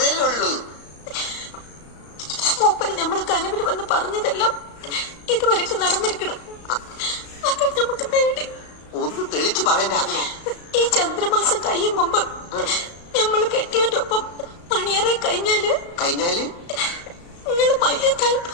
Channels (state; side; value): late; right; 35 ms